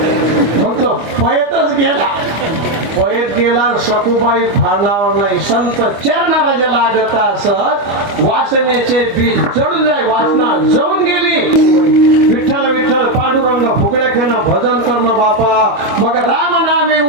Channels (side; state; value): left; late; 25 ms